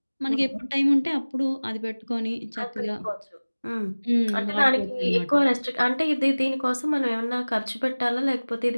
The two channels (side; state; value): both; inverted; correlation -1.00